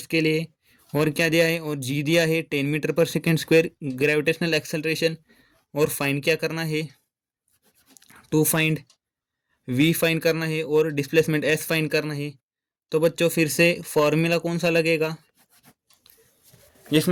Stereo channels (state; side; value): identical; both; correlation 1.00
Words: लिए, और क्या दिया है, और जी दिया है 10 metre per second square gravitational acceleration. और फाइंड क्या करना है, टू फाइंड वी फाइंड करना है और डिस्प्लेसमेंट एस फाइंड करना है। तो बच्चों फिर से फॉर्मूला कौन सा लगेगा